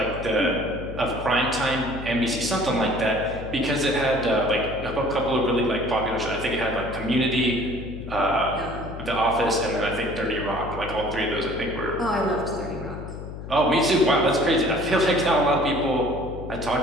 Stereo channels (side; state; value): left; noise; hum, 10 dB below the sound